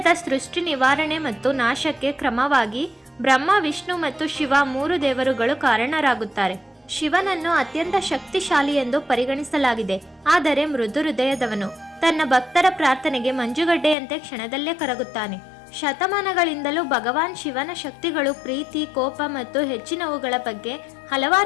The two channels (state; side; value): drops out; right; at 14.0 s